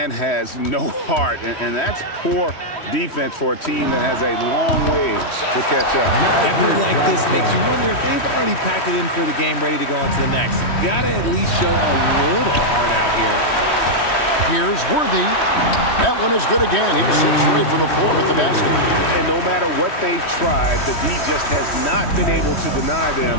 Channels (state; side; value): late; right; 3.1 ms